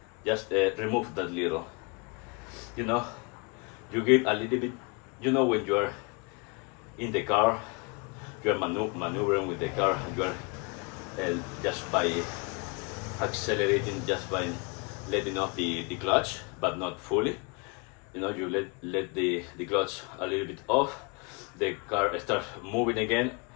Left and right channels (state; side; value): quieter; right; 30.7 dB